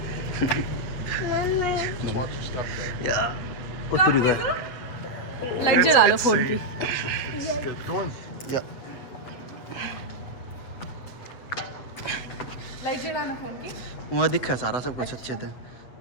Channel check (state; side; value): late; right; 8.1 ms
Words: Just watch your step there. या उतरी गए लाइट जला लो फोन की Good. Go in. या लाइट जलाना फोन की वहाँ दिखा सारा सब कुछ अच्छे थे